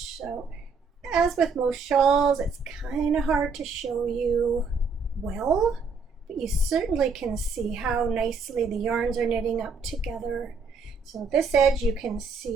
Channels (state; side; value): quieter; left; 4.7 dB